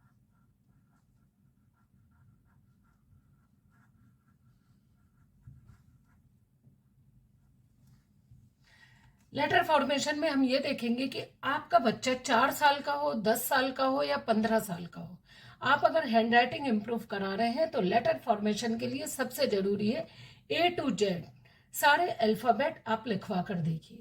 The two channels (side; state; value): both; identical; correlation 1.00